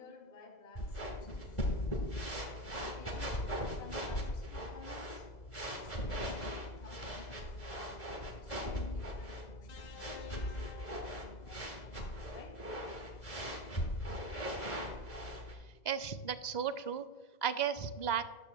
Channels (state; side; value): late; right; 2.0 ms